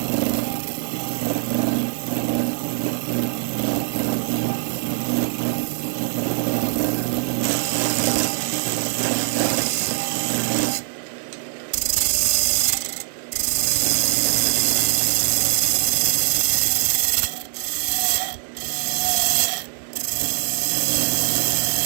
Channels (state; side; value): silent; left; 58 dB below the other